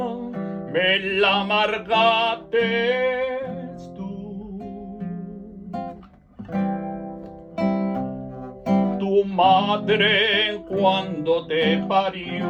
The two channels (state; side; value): identical; both; correlation 1.00